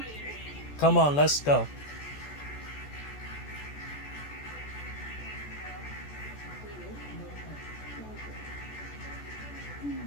Come on, let's go.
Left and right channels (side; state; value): right; late; 14 ms